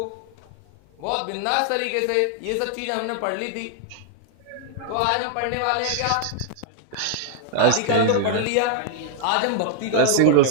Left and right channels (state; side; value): different; both; correlation 0.00